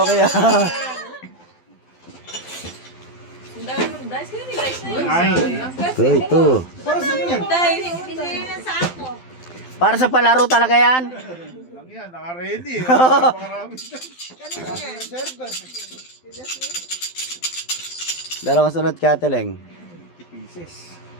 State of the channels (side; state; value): right; late; 12 ms